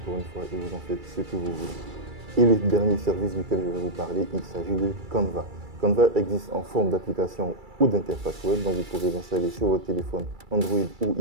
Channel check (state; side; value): late; left; 2.3 ms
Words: une fois et vous en faites ce que vous voulez. Et le dernier service duquel je vais vous parler, il s'agit de Canva. Canva existe en forme d'application ou d'interface web, donc vous pouvez l'installer sur votre téléphone Android ou